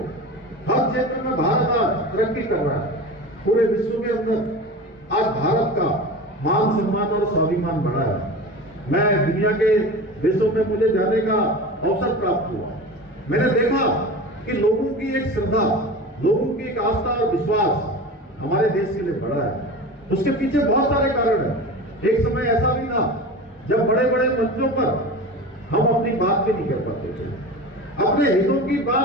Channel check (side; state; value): both; normal; correlation 0.31